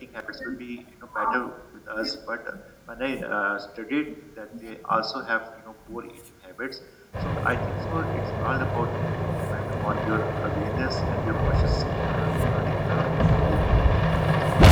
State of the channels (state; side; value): identical; both; correlation 1.00